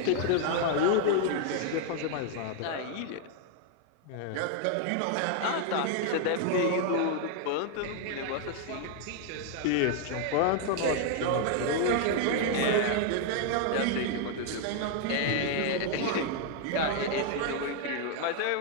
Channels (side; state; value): both; different; correlation 0.00